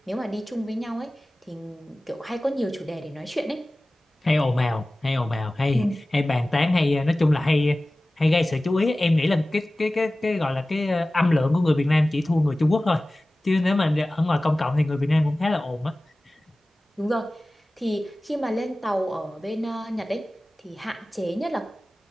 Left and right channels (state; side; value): normal; both; correlation 0.97